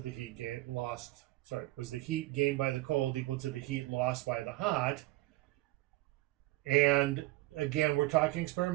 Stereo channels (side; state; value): left; quieter; 18.9 dB